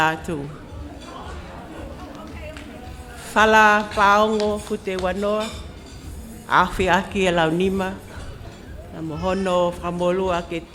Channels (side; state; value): both; identical; correlation 1.00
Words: Whala paongo fute wanoa, awhi aki e launima, na mohono whamolu ake